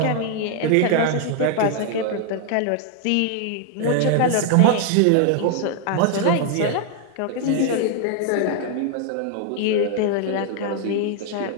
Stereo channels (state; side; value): different; both; correlation 0.00